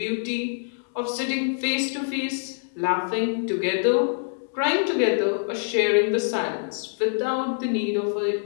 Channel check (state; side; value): silent; right; digital silence